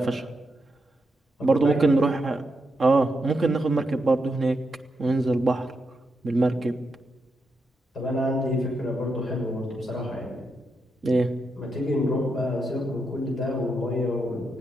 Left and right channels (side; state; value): both; normal; correlation 0.84